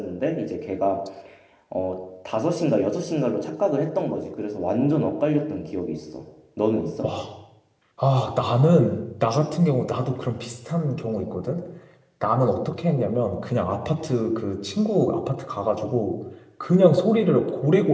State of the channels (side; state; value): both; identical; correlation 1.00